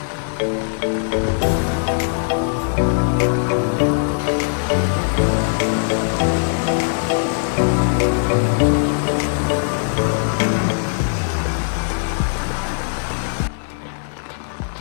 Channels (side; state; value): right; silent; digital silence